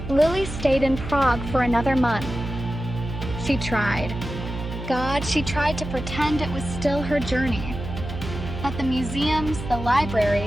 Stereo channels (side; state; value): right; noise; hum, 8 dB below the sound